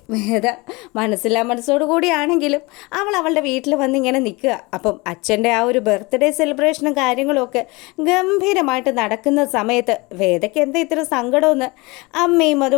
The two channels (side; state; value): right; quieter; 25.0 dB